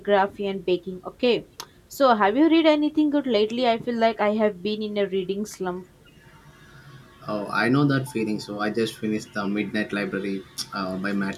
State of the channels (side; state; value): both; identical; correlation 1.00